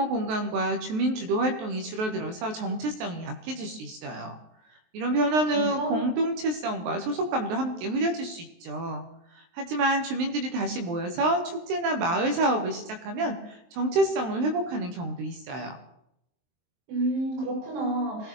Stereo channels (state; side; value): late; left; 23 ms